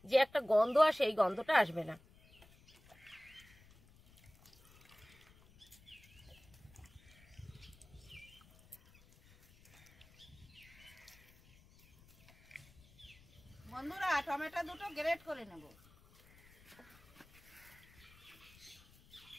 যে একটা গন্ধ আসে, এই গন্ধটা আসবে না। বন্ধুরা, টমেটো দুটো গ্রেট করে নেব।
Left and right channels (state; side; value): noise; left; rumble, 25 dB below the sound